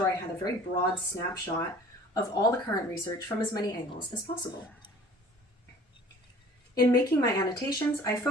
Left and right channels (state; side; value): normal; both; correlation 0.48